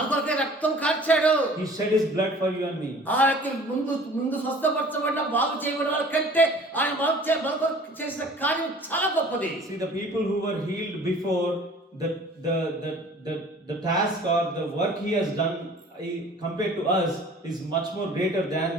కొరకే రక్తం కార్చాడు. He shed his blood for you and me. ఆ యొక్క ముందు స్వస్థపరచబడిన బాగు చేయబడిన వాళ్ళ కంటే ఆయన మన కొరకు చేసిన కార్యం చాలా గొప్పది. See, the people who were healed before, the task or the work he has done compared to us is much more greater than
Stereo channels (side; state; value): both; normal; correlation 0.48